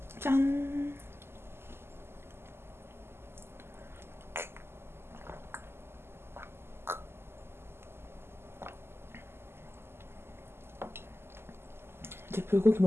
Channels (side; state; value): left; late; 0.12 ms